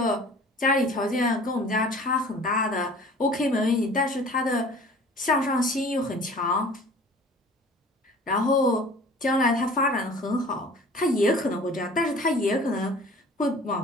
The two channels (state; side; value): normal; both; correlation 0.47